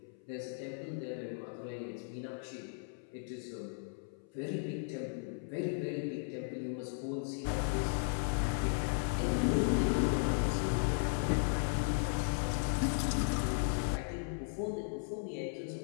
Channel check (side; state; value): right; silent; 54 dB below the other